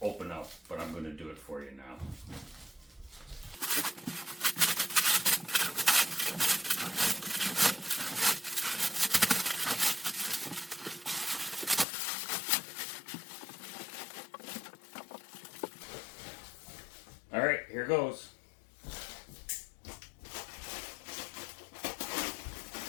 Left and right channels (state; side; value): drops out; right; at 11.9 s